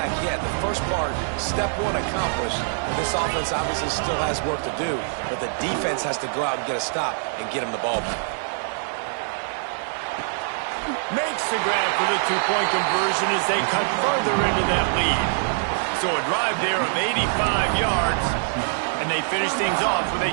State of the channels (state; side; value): silent; left; digital silence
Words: yet. The first part, step 1 accomplished. This offense obviously still has work to do, but the defense has to go out and get a stop and get him the ball back. Makes the grab for the 2-point conversion as they cut further into that lead. So a drive there of 85 yards, and they finish things off with a